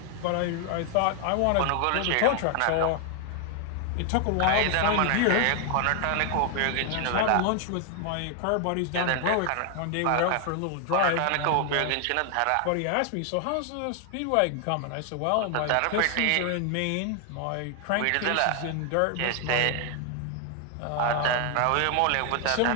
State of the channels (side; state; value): both; different; correlation 0.00